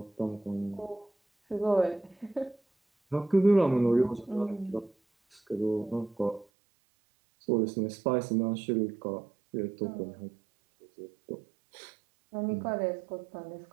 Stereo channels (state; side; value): drops out; left; at 6.5 s